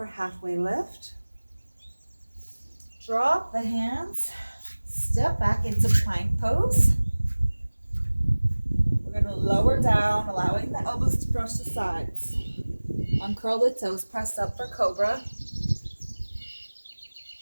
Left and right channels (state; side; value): inverted; both; correlation -1.00